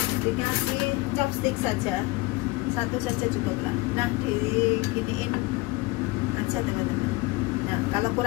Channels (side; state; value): right; quieter; 22.3 dB